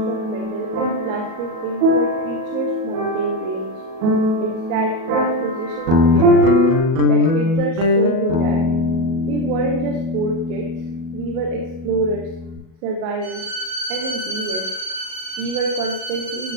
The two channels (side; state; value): left; late; 37 ms